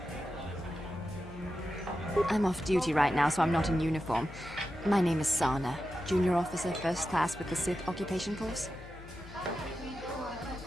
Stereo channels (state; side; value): noise; left; hum, 16 dB below the sound